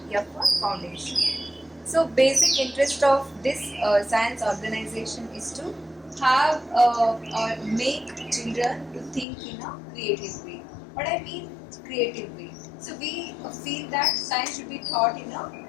F for Foundation. So basic interest of this science organization is to have or make children to think in a creative way. What I mean creative way. So we feel that science should be taught in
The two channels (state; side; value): drops out; right; at 9.2 s